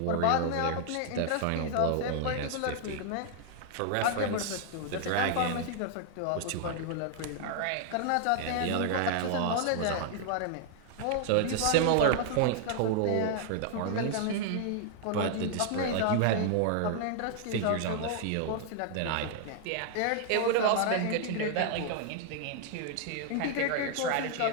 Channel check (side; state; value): both; different; correlation 0.00